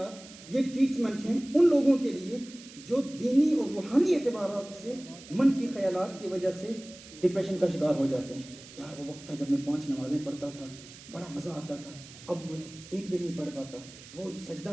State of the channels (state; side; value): noise; right; hiss, 18 dB below the sound